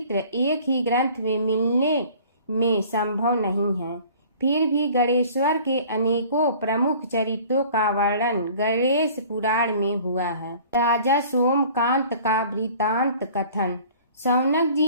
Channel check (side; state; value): both; inverted; correlation -0.49